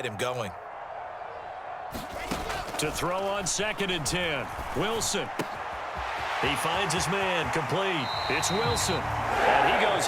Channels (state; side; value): identical; both; correlation 1.00